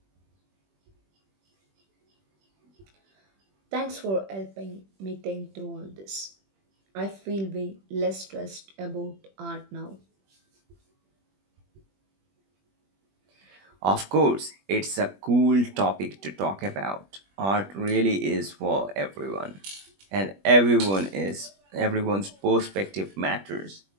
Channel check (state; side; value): late; left; 21 ms